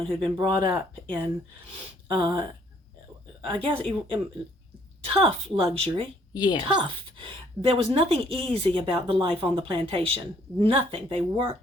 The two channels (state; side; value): normal; both; correlation 0.64